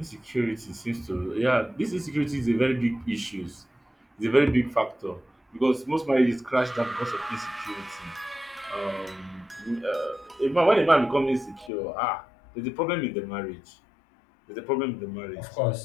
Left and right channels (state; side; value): drops out; right; at 11.7 s